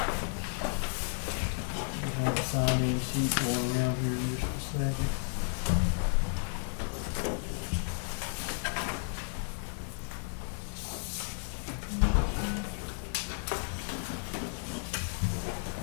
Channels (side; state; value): right; silent; 56 dB below the other